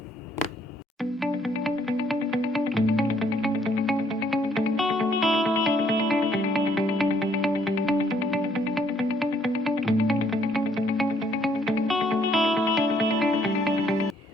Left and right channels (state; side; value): normal; both; correlation 0.67